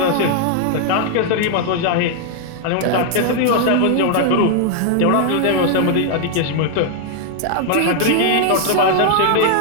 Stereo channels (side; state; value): both; different; correlation 0.00